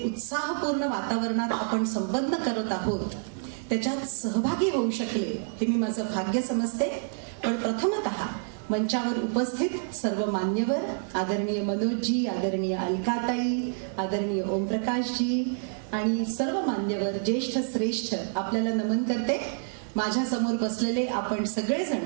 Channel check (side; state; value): left; silent; digital silence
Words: उत्साहपूर्ण वातावरणात आपण संपन्न करत आहोत त्याच्यात सहभागी होऊ शकले हे मी माझं भाग्य समजते. पण प्रथमतः मंचावर उपस्थित सर्व मान्यवर, आदरणीय मनोजजी, आदरणीय अलकाताई, आदरणीय ओमप्रकाशजी आणि सर्व मान्यवर, ज्येष्ठ श्रेष्ठ आपल्याला नमन करते. माझ्या समोर बसलेले आपण सगळेजण